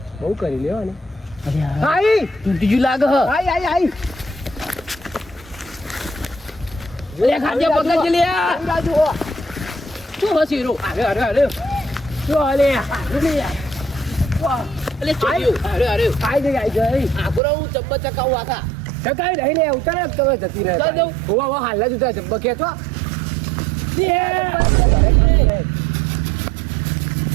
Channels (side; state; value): left; drops out; at 17.4 s